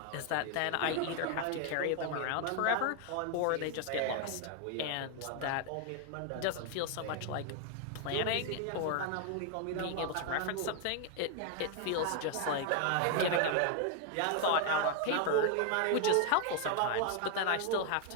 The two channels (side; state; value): both; different; correlation 0.01